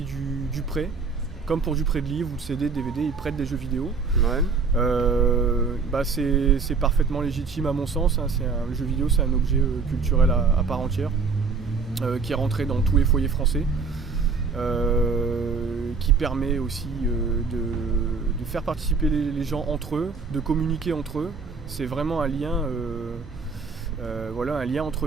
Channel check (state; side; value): quieter; left; 4.8 dB